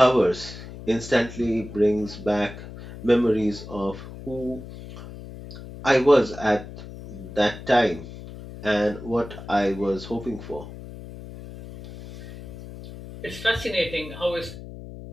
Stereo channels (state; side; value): noise; left; hum, 13 dB below the sound